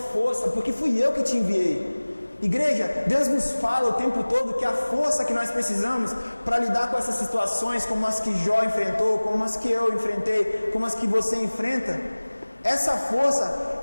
porque fui eu que te enviei. Igreja, Deus nos fala o tempo todo que a força que nós precisamos para lidar com essas situações, como as que Jó enfrentou, como as que eu enfrentei, como as que você enfrenta, essa força,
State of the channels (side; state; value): both; inverted; correlation -1.00